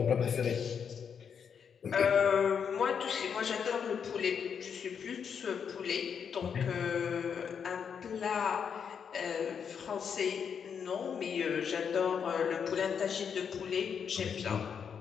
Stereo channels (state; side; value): quieter; right; 7.1 dB